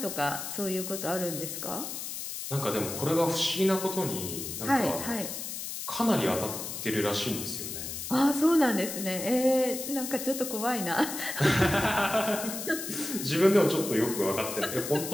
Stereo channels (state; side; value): noise; left; hiss, 6 dB below the sound